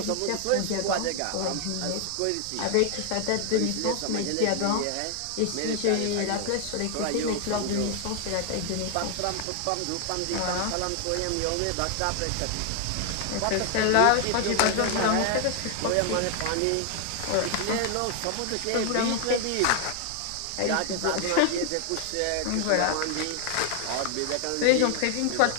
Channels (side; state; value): both; different; correlation 0.00